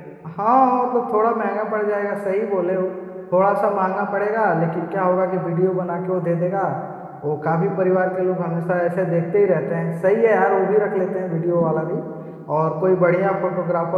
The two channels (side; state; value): both; identical; correlation 1.00